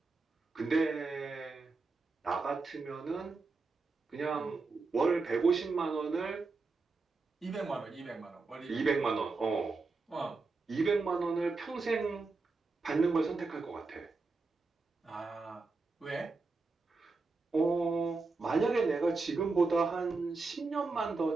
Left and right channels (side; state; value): left; quieter; 3.9 dB